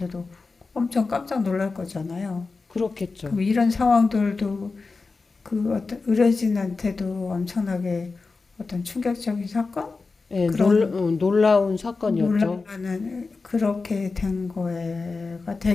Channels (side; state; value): right; quieter; 4.1 dB